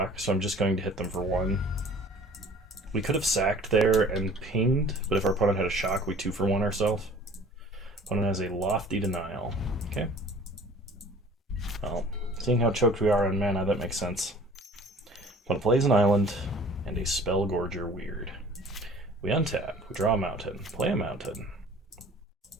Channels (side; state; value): both; normal; correlation 0.49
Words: so I'm just going to hit them for 1. We could have sacked there and pinged, but if our opponent had a shock, we 2-for-1 ourselves. Opponent has a Lofty Denial. Okay. Well, seeing how choked we are on mana, that makes sense. Opponent plays an island and a Spellgorger Weird. We untap, we draw a mountain, play a mountain.